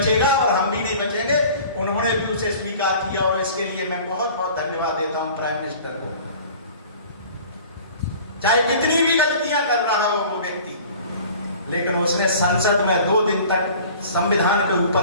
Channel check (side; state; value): both; inverted; correlation -0.45